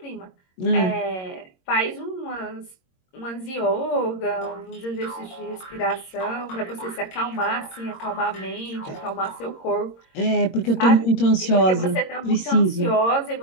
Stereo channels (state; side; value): late; right; 22 ms